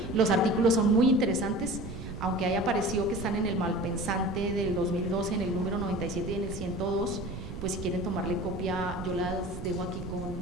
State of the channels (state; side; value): noise; right; rumble, 9 dB below the sound